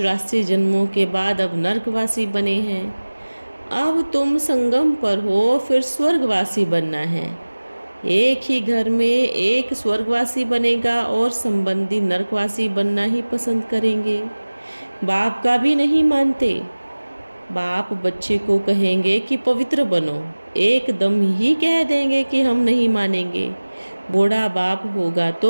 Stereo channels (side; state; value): both; inverted; correlation -1.00